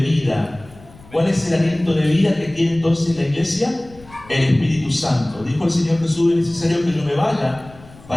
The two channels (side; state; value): left; noise; rumble, 22 dB below the sound